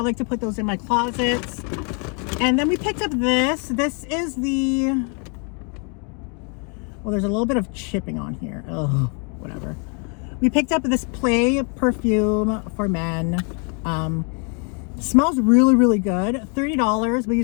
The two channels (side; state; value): right; quieter; 37.8 dB